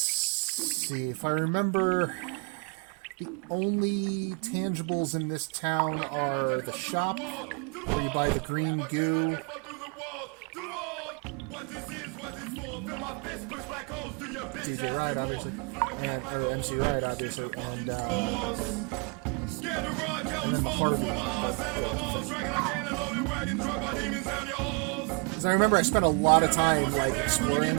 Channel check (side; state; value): left; quieter; 35.6 dB